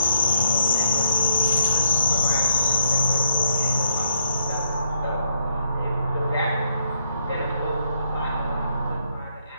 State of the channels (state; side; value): inverted; both; correlation -0.74